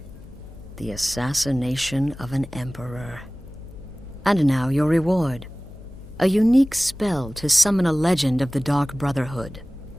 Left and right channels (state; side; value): noise; left; hum, 16 dB below the sound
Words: The assassination of an emperor. And now your reward. A unique spell to summon a legend of the Dark Brotherhood.